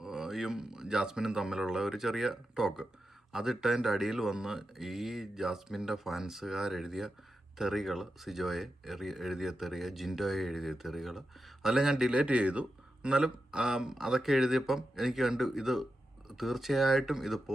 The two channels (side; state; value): both; normal; correlation 0.89